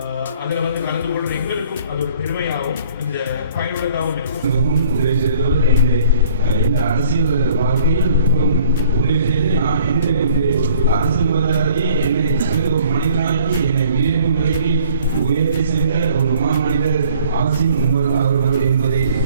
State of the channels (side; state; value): both; inverted; correlation -0.55